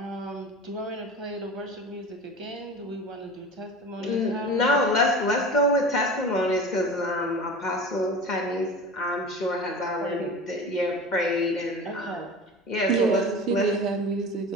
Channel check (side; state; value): both; normal; correlation 0.34